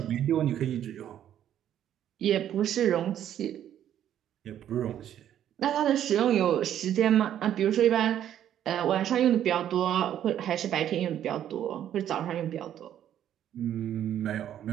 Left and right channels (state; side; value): quieter; left; 10.7 dB